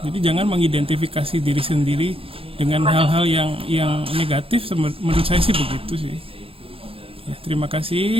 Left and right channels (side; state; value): left; late; 0.27 ms